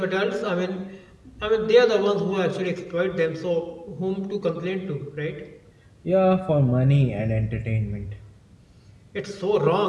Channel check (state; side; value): identical; both; correlation 1.00